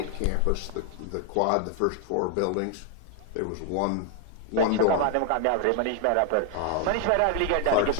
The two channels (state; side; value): different; both; correlation 0.00